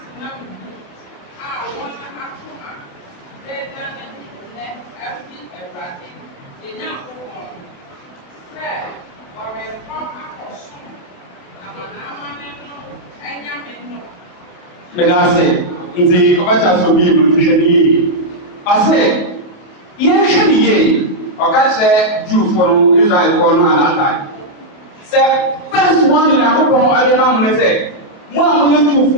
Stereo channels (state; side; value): late; right; 28 ms